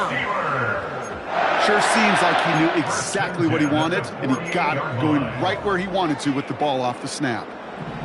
Sure seems like he knew exactly what he wanted, and he got it going right where he wanted to with the ball off the snap.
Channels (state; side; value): identical; both; correlation 1.00